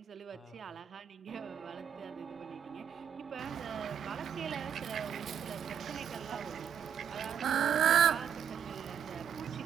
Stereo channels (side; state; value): left; quieter; 8.2 dB